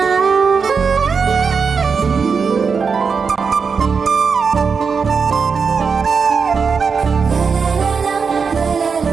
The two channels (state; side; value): quieter; left; 5.6 dB